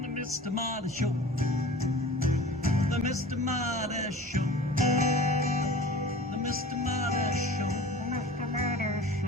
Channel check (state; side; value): normal; both; correlation 0.41